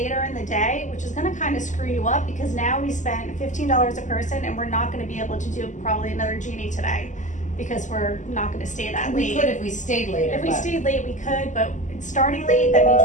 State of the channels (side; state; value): right; late; 0.36 ms